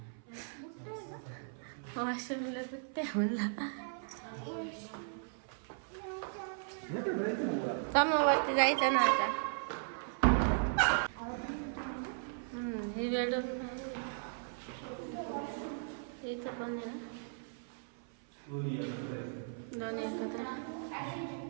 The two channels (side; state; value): left; silent; 53 dB below the other